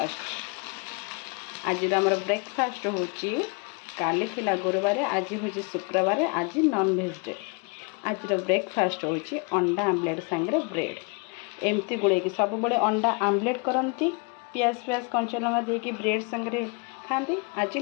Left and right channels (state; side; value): quieter; right; 33.4 dB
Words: आज आमर ब्रेकफास्ट होची काली थिला गुरुवार आज होची शुक्रवार आज नॉनवेज डे। आज ब्रेकफास्ट होची अंडा आमलेट सांगरे ब्रेड एमती गुड़े सब बड़े अंडा आमलेट करती पियाज पियाज कंचा लंका देकी ब्रेड सांगरे खाती। आज